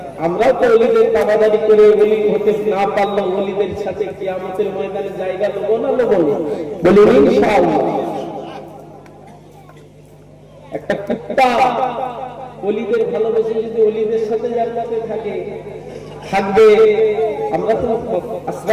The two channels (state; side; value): identical; both; correlation 1.00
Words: আমরাও তো ওলিদের দাবাদারি করে ওলি হতে না পারলেও ওলিদের সাথে কিয়ামতের ময়দানে জায়গা নেবো না নেবো, বলি ইনশাআল্লাহ। একটা কুত্তা ওলিদের ভালোবেসে যদি ওলিদের সাথে জান্নাতে থাকবে, আমরা তো